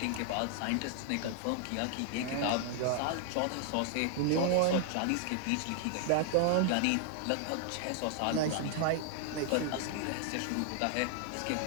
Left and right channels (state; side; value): different; both; correlation 0.00